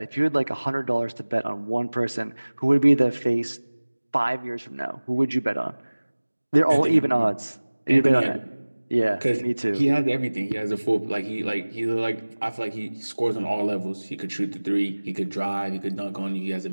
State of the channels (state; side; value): inverted; both; correlation -1.00